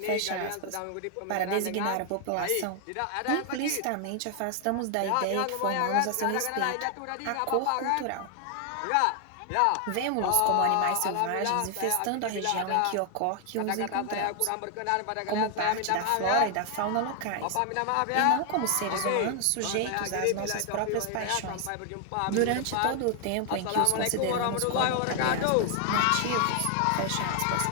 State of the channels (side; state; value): both; different; correlation 0.00